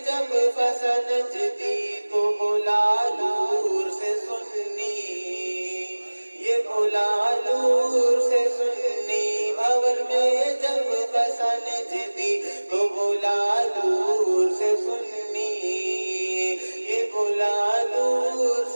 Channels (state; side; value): inverted; both; correlation -1.00